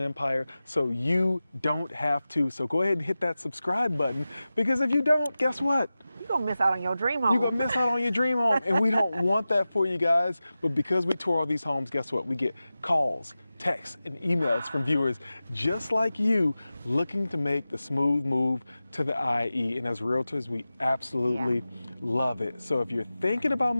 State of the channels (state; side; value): inverted; both; correlation -0.95